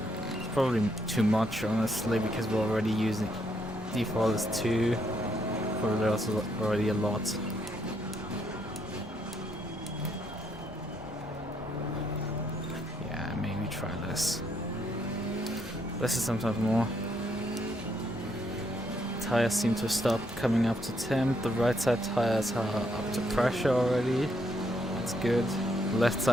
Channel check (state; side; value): normal; both; correlation 0.74